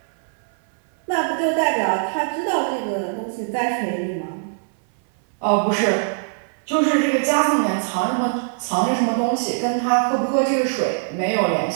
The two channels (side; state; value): left; silent; 60 dB below the other